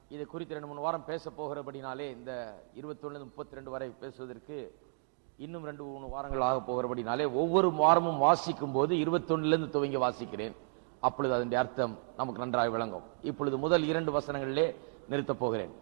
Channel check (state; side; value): silent; left; 55 dB below the other